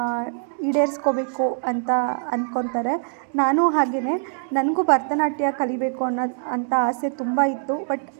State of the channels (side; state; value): left; silent; 63 dB below the other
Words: ಈಡೇರಿಸ್ಕೋಬೇಕು ಅಂತ ಅಂದ್ಕೊತಾರೆ. ನಾನು ಹಾಗೆಯೇ, ನನಗೂ ಭರತನಾಟ್ಯ ಕಲಿಬೇಕು ಅಂತ ಆಸೆ ತುಂಬ ಇತ್ತು. ಬಟ್